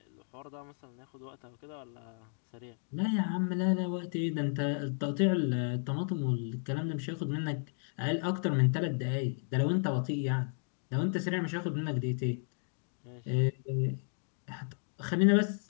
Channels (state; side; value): silent; right; 55 dB below the other